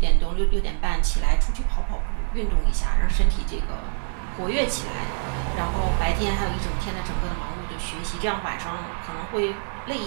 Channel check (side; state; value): left; silent; 62 dB below the other